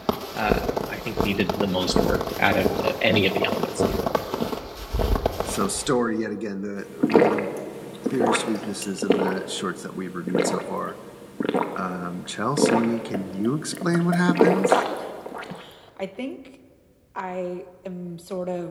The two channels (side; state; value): both; identical; correlation 1.00